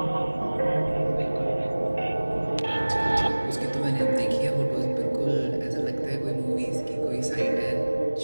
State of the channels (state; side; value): inverted; both; correlation -1.00